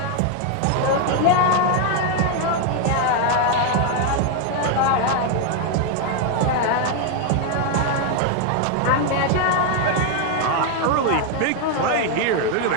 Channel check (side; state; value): both; different; correlation 0.00